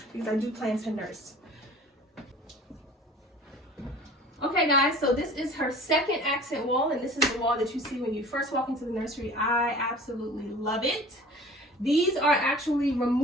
because I do plan to nurse. Okay guys, so this is her second accent wall, and this is the wall that you see when you first walk into the nursery. I absolutely love it. These are actually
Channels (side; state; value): both; normal; correlation 0.45